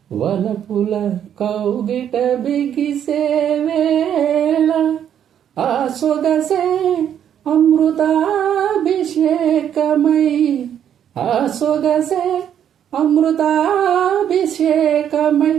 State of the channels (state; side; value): quieter; left; 9.5 dB